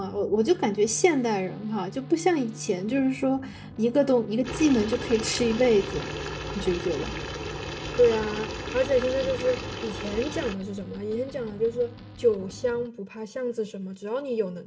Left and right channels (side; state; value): both; identical; correlation 1.00